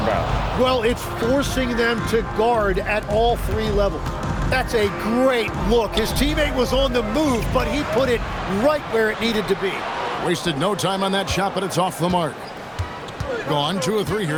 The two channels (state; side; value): identical; both; correlation 1.00